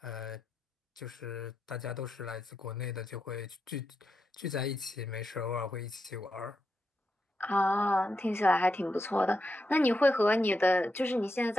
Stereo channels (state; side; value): normal; both; correlation 0.86